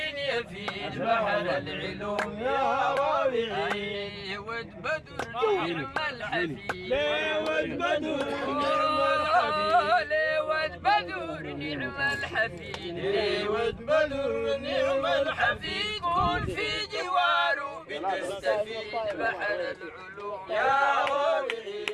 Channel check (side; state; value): both; identical; correlation 1.00